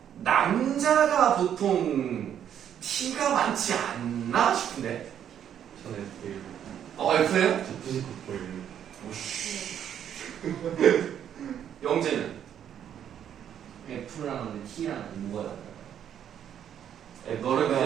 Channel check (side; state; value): left; quieter; 9.5 dB